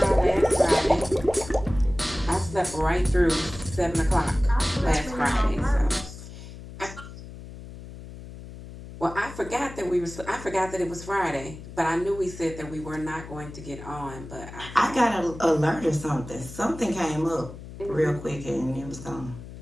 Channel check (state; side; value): noise; left; hum, 14 dB below the sound